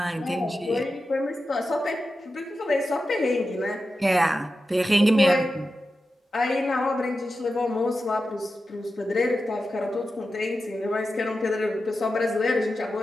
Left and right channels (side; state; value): both; normal; correlation 0.91